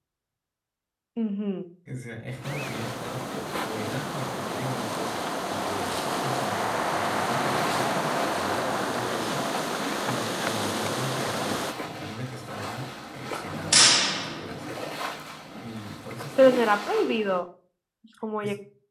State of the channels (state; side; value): identical; both; correlation 1.00